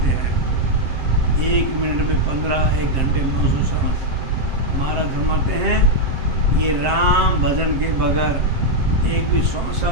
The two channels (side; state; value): left; late; 7.7 ms